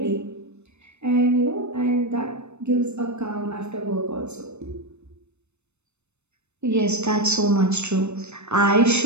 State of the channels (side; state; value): left; late; 0.81 ms